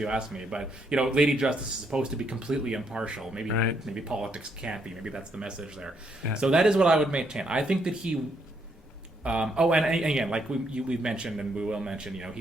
asked me. But, Lady Justice is supposed to be completely impartial. Maybe politics can't be. Maybe that's the message there. Yeah. So that is what I would maintain. I think that he... and again, like we've mentioned and we will mention, he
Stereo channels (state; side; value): normal; both; correlation 0.74